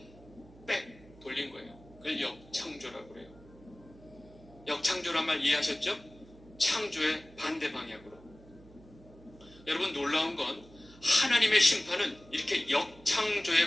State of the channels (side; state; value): right; noise; hum, 23 dB below the sound